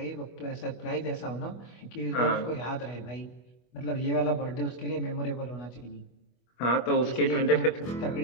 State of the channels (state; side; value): late; right; 24 ms